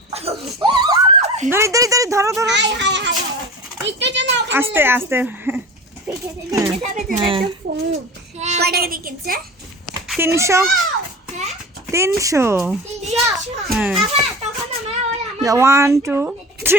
ধরি ধরো হাই একটু জন্য আস্তে কয় টাকা দিয়ে কিনছে 300 হ্যাঁ 300 হ্যাঁ তখন আমরা 1 2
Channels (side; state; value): both; normal; correlation 0.34